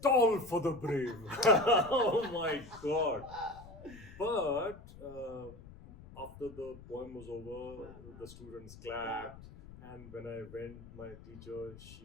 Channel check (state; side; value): noise; left; rumble, 17 dB below the sound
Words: Toll for the brave. Oh my God. But after the poem was over, the students clapped. And when I went, my teacher,